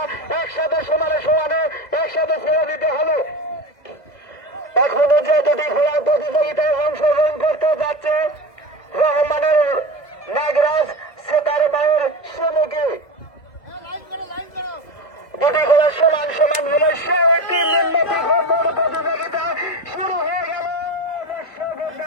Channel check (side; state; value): right; late; 1.7 ms